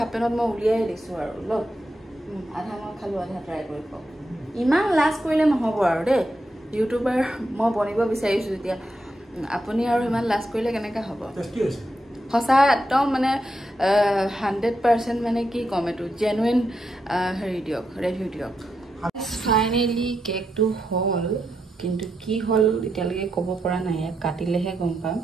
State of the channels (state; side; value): normal; both; correlation 0.84